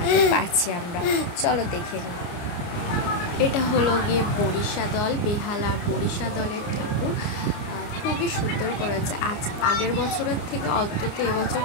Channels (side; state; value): right; late; 29 ms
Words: পারছি আমরা। চলো দেখে নিই। এটা হলো গিয়ে বরিশা দল, বেহালার বরিশা দলের ঠাকুর। খুবই সুন্দর করেছে, আগের বছরের থেকে অন্তত এবছর